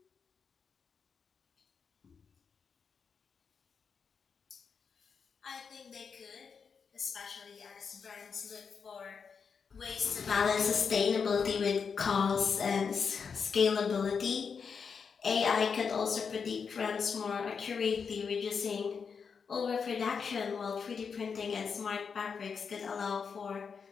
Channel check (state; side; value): quieter; right; 6.0 dB